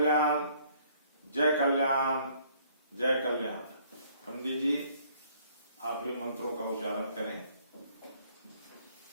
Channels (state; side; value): inverted; both; correlation -0.61